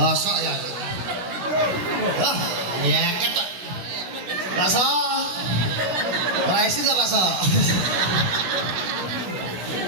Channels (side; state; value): left; late; 16 ms